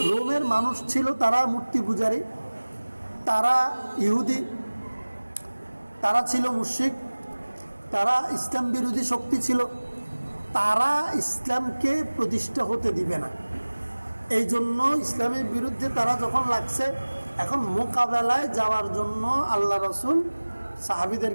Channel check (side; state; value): both; inverted; correlation -1.00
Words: রোমের মানুষ ছিল তারা মূর্তি পূজারী, তারা ইহুদি, তারা ছিল মুশরিক, তারা ইসলাম বিরোধী শক্তি ছিল, তারা ইসলামকে প্রতিষ্ঠা হতে দিবে না। এই জন্য ইসলামের বিরুদ্ধে তারা যখন লাগছে, এখন মোকাবেলায় যাওয়ার জন্য আল্লাহ রসুল